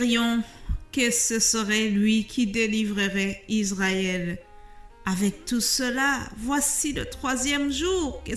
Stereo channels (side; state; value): both; identical; correlation 1.00